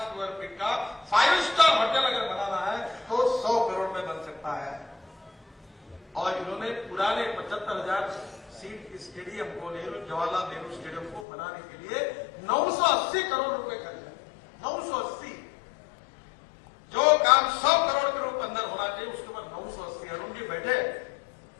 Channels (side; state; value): right; drops out; at 11.2 s